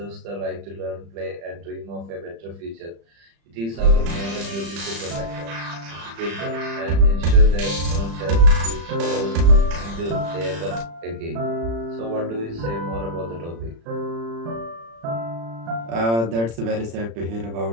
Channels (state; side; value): late; left; 35 ms